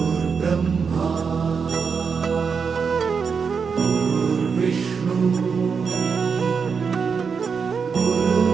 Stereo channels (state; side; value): quieter; left; 5.8 dB